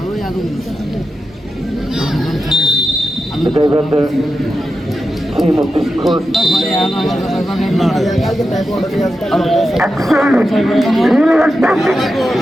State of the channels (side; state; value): both; normal; correlation 0.89